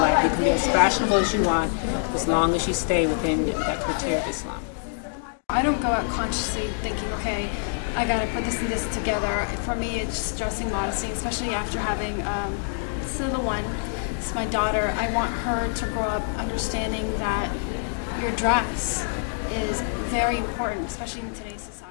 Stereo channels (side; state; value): right; silent; digital silence